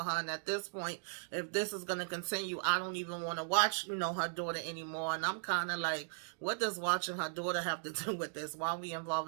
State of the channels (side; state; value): left; silent; digital silence